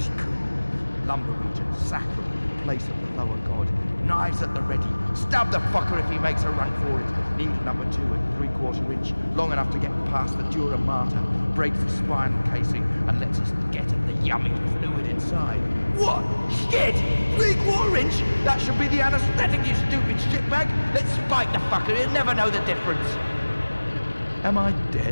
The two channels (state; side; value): inverted; both; correlation -1.00